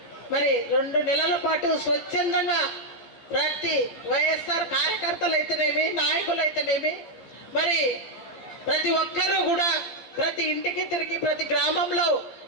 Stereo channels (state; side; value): late; right; 15 ms